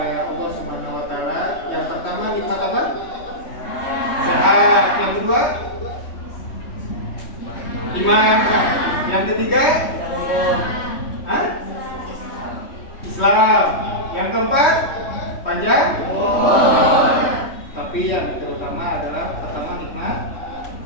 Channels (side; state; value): right; late; 3.1 ms